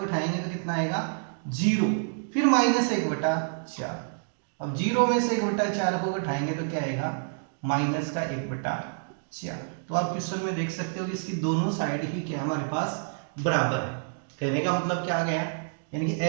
घटाएंगे तो कितना आएगा 0, फिर माइनस 1/4। अब 0 में से 1/4 को घटाएंगे तो क्या आएगा माइनस का 1/4। तो आप क्वेश्चन में देख सकते हो कि इसकी दोनों साइड ही क्या हमारे पास बराबर है। कहने का मतलब क्या आ गया, यानी कि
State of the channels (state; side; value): silent; left; digital silence